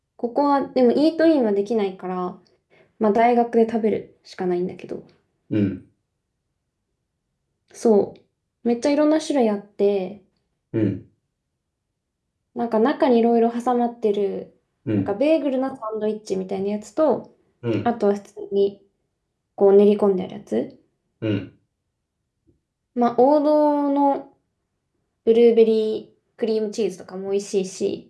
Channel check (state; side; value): identical; both; correlation 1.00